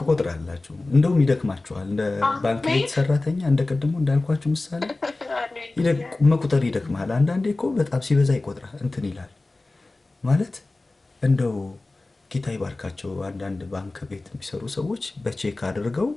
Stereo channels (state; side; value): quieter; right; 3.1 dB